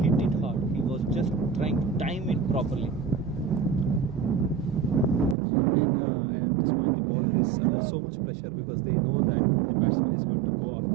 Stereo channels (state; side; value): drops out; left; at 5.4 s